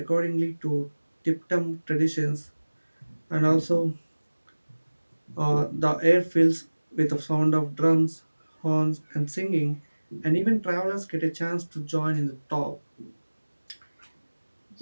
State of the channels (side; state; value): both; inverted; correlation -1.00